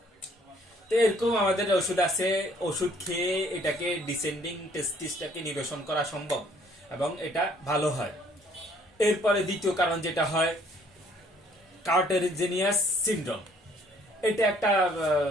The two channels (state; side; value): normal; both; correlation 0.61